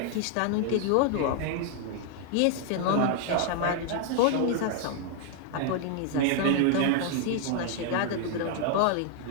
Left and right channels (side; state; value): both; different; correlation 0.00